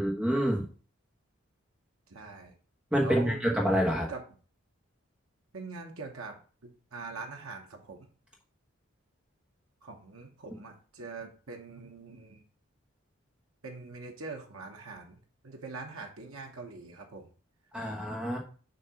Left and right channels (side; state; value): both; normal; correlation 0.80